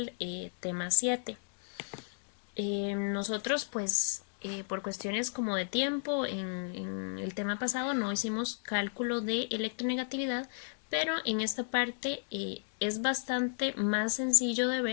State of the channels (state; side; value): silent; right; digital silence